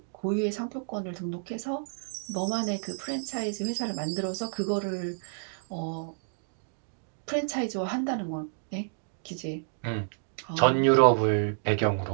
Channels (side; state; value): left; silent; digital silence